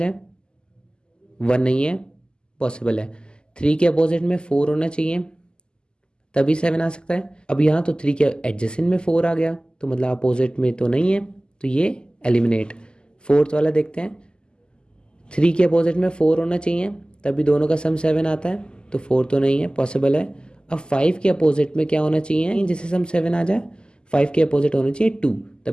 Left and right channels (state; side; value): late; right; 0.047 ms